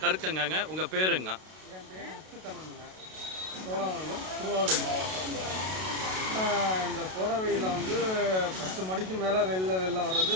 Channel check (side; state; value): left; late; 32 ms